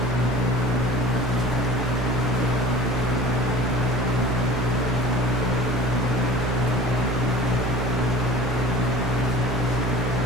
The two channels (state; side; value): normal; both; correlation 0.42